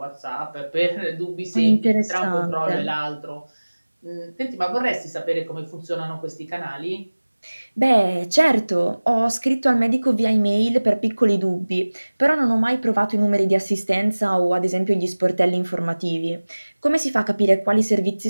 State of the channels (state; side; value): inverted; both; correlation -1.00